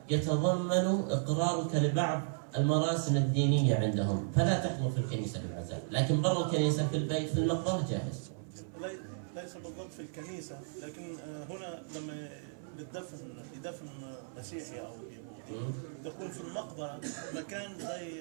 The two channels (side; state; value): left; silent; 55 dB below the other